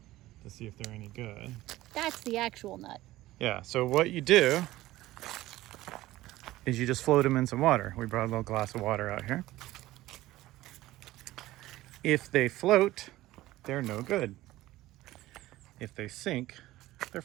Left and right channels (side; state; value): left; quieter; 16.6 dB